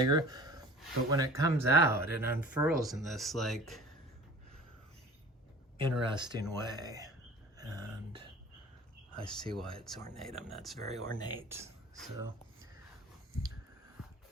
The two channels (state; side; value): normal; both; correlation 0.43